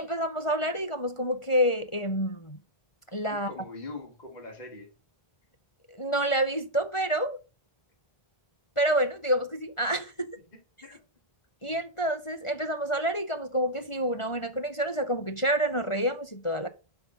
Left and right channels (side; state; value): right; late; 1.4 ms